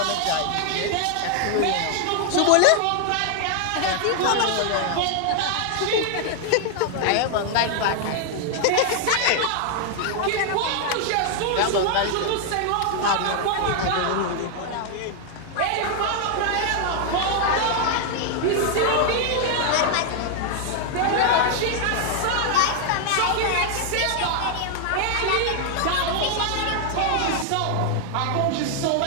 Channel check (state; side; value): different; both; correlation 0.00